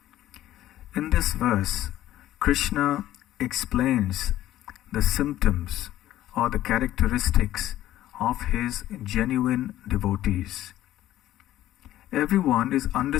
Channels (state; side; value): quieter; right; 13.7 dB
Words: In this verse, Krishna explains the symptoms or the characteristics of his genuine devotees. Everyone is